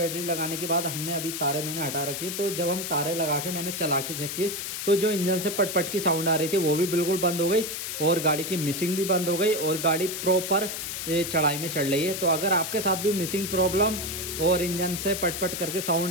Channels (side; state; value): left; noise; hiss, 5 dB below the sound